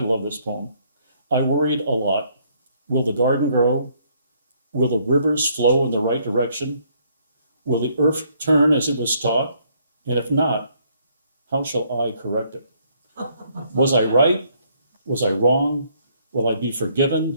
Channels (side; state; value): both; inverted; correlation -0.67